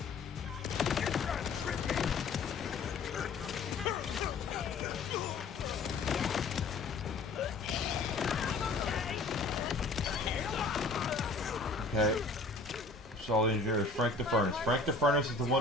Okay. Solid engineer is Frank the Furnace. Frank the Furnace is the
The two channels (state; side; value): quieter; right; 3.7 dB